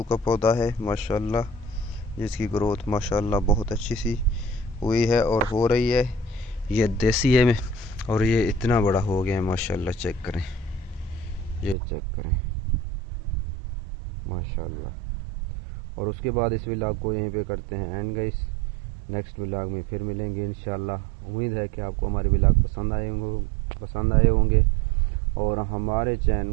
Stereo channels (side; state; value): left; drops out; at 11.8 s